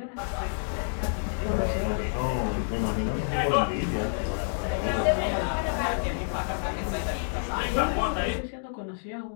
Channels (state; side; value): silent; right; digital silence